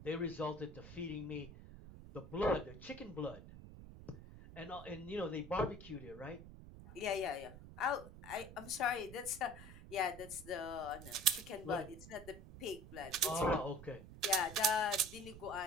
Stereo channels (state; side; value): noise; right; rumble, 15 dB below the sound